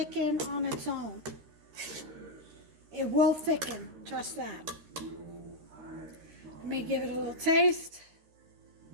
on its own. It will thicken, trust that. Let me give it a little taste.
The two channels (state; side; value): late; left; 13 ms